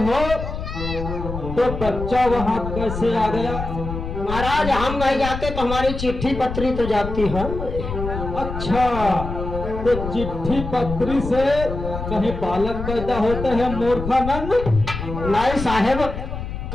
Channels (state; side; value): noise; left; rumble, 6 dB below the sound